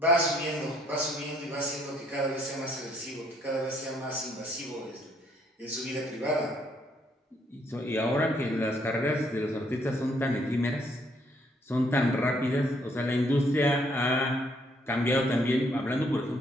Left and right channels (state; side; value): normal; both; correlation 0.68